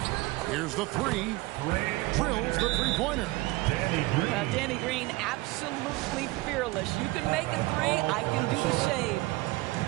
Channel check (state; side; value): quieter; left; 21.0 dB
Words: Here's the 3. Drills the three-pointer. Danny Green, absolutely fearless. You can make a 3. I can do the same.